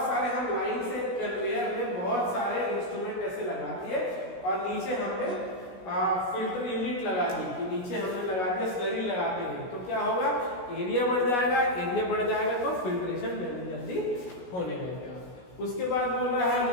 सारे हम लाइन से कन्वेयर में बहुत सारे इंस्ट्रूमेंट ऐसे लगा दिए और नीचे हमने फिल्टर यूनिट लगा दी, कि नीचे हमने लगा दिया स्लरी लगाते हैं, तो क्या होगा, एरिया बढ़ जाएगा, एरिया बढ़ जाएगा तो फिल्ट्रेशन जल्दी जल्दी होने लगेगा। उसके बाद बोल रहा है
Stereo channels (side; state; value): right; late; 16 ms